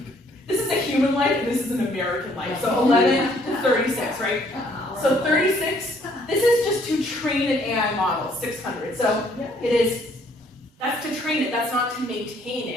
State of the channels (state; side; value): normal; both; correlation 0.64